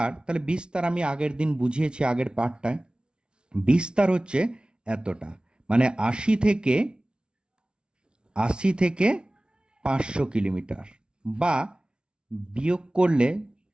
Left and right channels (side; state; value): left; late; 0.055 ms